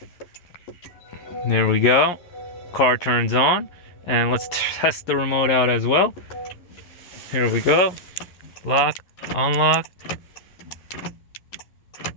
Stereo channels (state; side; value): late; right; 11 ms